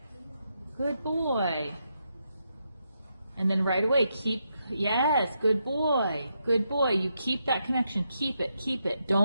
Good boy. And then right away, yes, good boy. Good boy. You keep that connection. Keep it. Keep it.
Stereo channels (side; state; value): both; inverted; correlation -0.82